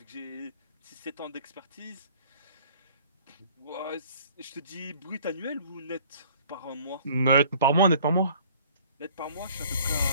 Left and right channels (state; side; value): inverted; both; correlation -0.53